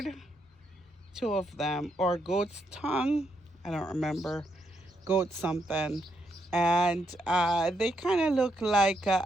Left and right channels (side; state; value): both; normal; correlation 0.78